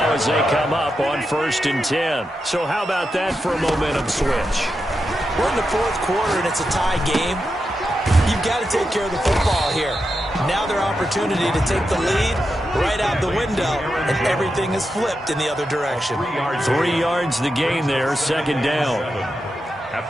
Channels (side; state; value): both; normal; correlation 0.88